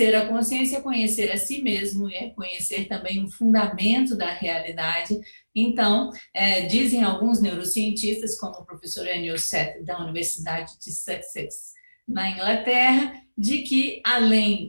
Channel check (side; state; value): both; inverted; correlation -1.00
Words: a consciência é conhecer a si mesmo, é conhecer também o fundamento da realidade. Então, dizem alguns neurocientistas, como o professor Anil Seth, da Universidade de Sussex, na Inglaterra, de que,